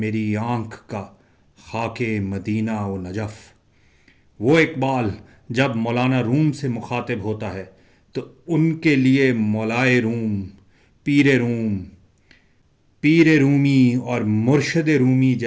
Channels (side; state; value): both; identical; correlation 1.00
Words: آنکھ کا خاک مدینہ و نجف۔ وہ اقبال جب مولانا روم سے مخاطب ہوتا ہے تو ان کے لیے مولائے روم، پیر رومی اور مرشد رومی